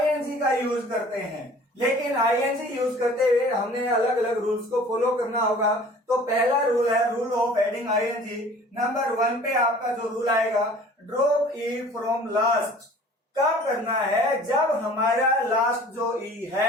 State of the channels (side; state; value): both; normal; correlation 0.48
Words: का यूज करते हैं। लेकिन आईएनजी यूज करते हुए हमने अलग अलग रूल्स को फॉलो करना होगा। तो पहला रूल है rule of adding ING. Number 1 पे आपका जो रूल आएगा, ड्रॉप ई फ्रॉम लास्ट। कब करना है? जब हमारा लास्ट जो ई